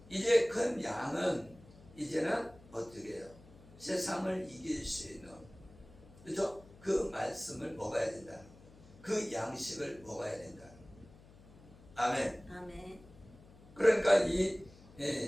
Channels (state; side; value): noise; left; hum, 22 dB below the sound